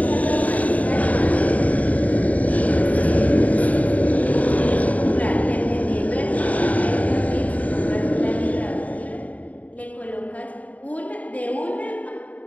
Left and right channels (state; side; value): late; right; 0.071 ms